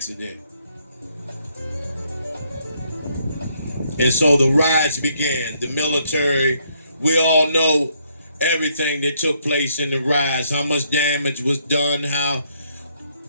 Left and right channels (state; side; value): inverted; both; correlation -0.71